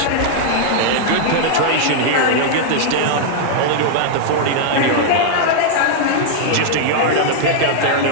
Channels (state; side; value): different; both; correlation -0.01